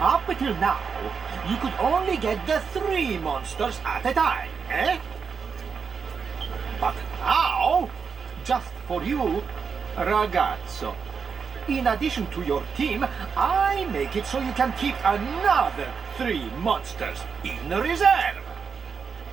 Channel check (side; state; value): left; quieter; 5.9 dB